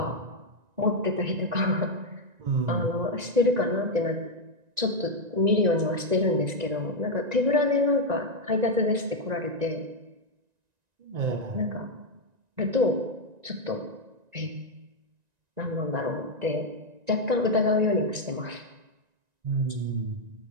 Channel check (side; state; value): left; late; 1.9 ms